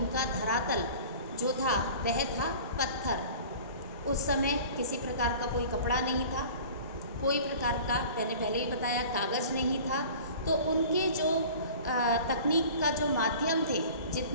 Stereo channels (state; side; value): inverted; both; correlation -0.43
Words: धरातल जो था वह था पत्थर। उस समय किसी प्रकार का कोई कपड़ा नहीं था, कोई प्रकार का, मैंने पहले ही बताया, कागज़ नहीं था। तो उनके जो तकनीक का जो माध्यम थे,